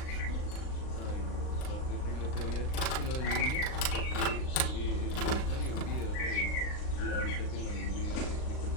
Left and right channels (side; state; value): right; late; 39 ms